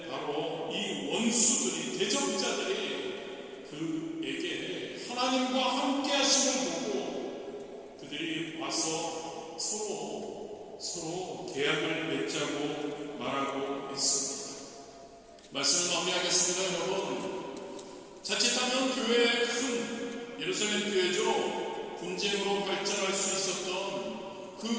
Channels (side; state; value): both; identical; correlation 1.00